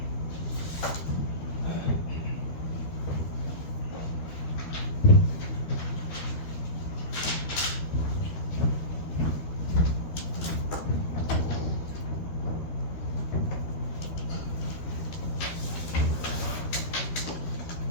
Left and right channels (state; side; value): late; right; 13 ms